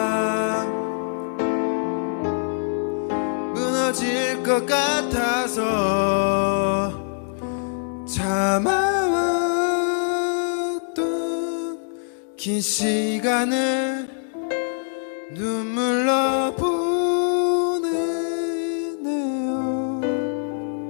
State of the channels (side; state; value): right; silent; digital silence